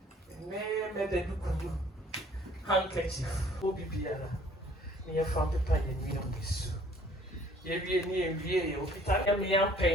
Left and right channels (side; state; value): both; normal; correlation 0.56